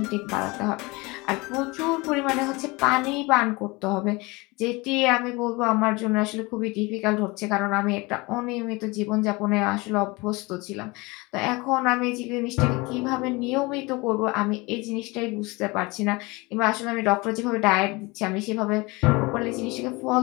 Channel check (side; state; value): right; quieter; 24.6 dB